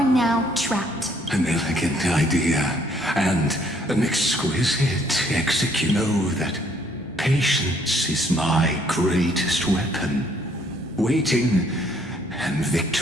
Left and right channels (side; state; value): both; normal; correlation 0.65